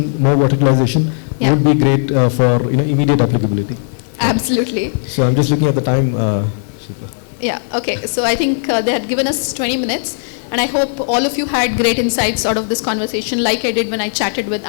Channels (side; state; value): right; silent; digital silence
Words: more verticalization would be great for immediate applicability. Absolutely. So I'm just looking at the time. Yeah, okay. So I think they had given us 20 minutes. And I hope all of you had great insights out of this conversation, like I did when I chatted with